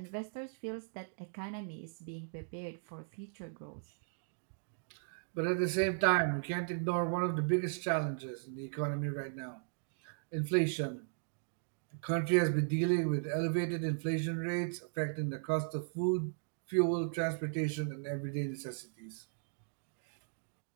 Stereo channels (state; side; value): silent; left; digital silence